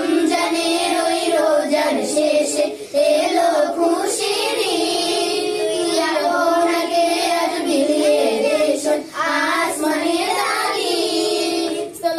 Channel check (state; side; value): identical; both; correlation 1.00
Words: ওই রোজার শেষে এলো খুশির ঈদ। তুই আপনাকে আজ বিলিয়ে দে শোন আসমানি তাগিদ।